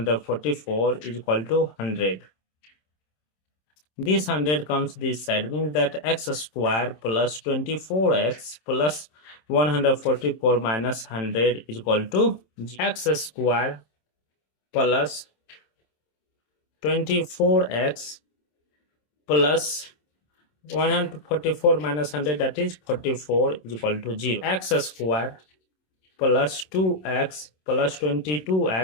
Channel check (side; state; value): right; late; 27 ms